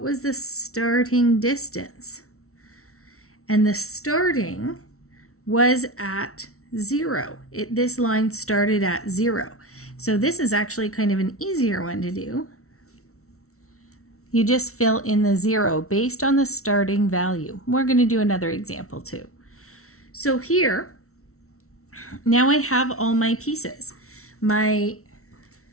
was the starting distance? And the starting was at 0. This line started at 0. So this is actually kind of an easier one to do. You just fill in the 0 based on the starting value. We're going to do another example too. So here, now I have all my pieces.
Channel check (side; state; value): right; late; 0.63 ms